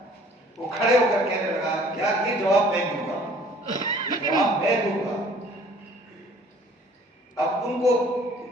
وہ کھڑے ہو کر کہنے لگا یار یہ جواب میں دوں گا، یہ جواب میں دوں گا۔ اب ان کو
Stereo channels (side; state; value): both; normal; correlation 0.54